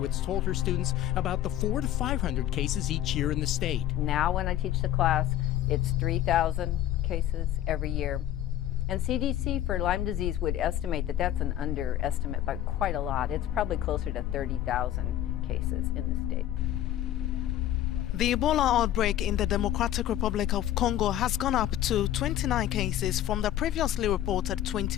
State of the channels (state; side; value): quieter; right; 12.3 dB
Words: told her students about the 400 to 500 cases each year in the state. Now when I teach the class, it's 3,000 cases every year. And CDC for Lyme disease would estimate that that's an underestimate by quite a lot. It's probably closer to 30,000 cases in the state. The Ebola outbreak in the Democratic Republic of Congo has gone up to 29 cases from the previously reported